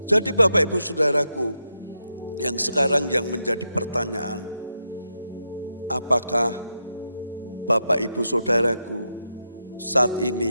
Jadi Bapak Ibu Saudaraku, yang sekarang yang menjadi pertanyaan, apakah Bapak Ibu Saudaraku saat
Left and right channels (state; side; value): inverted; both; correlation -0.85